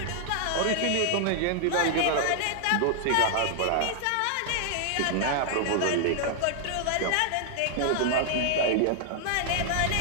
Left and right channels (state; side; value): different; both; correlation 0.00